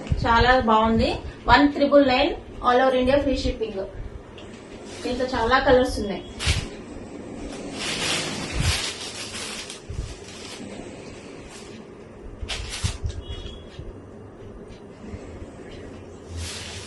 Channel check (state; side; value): identical; both; correlation 1.00